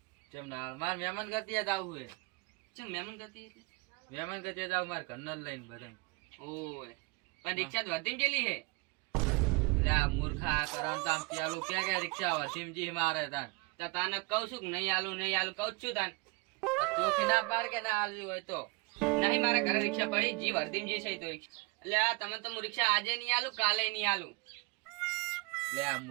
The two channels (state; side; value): quieter; left; 27.9 dB